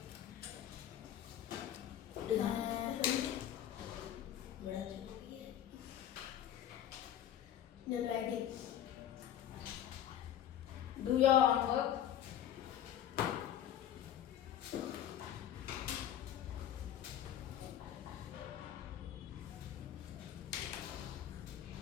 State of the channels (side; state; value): right; quieter; 10.9 dB